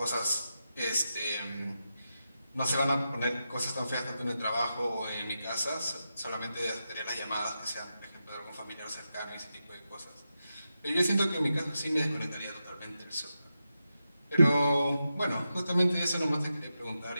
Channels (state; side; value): inverted; both; correlation -0.89